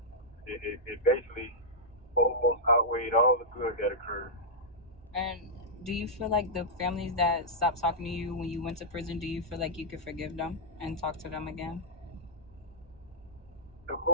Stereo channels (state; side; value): noise; right; hum, 25 dB below the sound